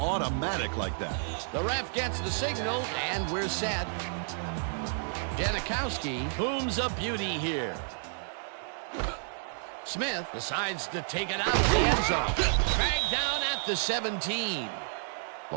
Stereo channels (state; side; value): silent; left; digital silence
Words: like that. The ref gets the signal, and we're set. Janikowski booms a beauty here. Smith decides to take it out of the end zone. Dragged down at the 17.